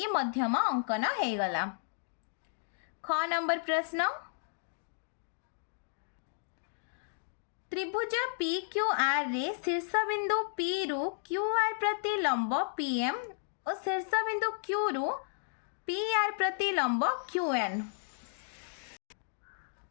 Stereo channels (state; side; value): silent; right; digital silence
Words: मध्यमा अंकन हो गला। ख नंबर प्रश्न त्रिभुज पी क्यू आर रे शीर्ष बिंदु पी रु क्यू आर प्रति लंब पीएम और शीर्ष बिंदु क्यू रु पी आर प्रति लंब क्यू एन।